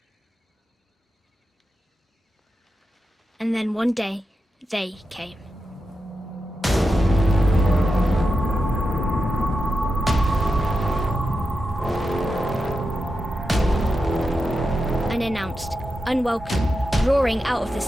And then one day, they came. Unannounced, unwelcome, roaring out of the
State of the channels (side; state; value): both; normal; correlation 0.89